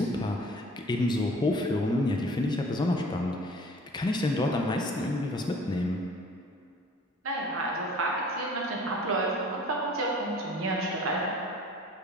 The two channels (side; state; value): both; normal; correlation 0.49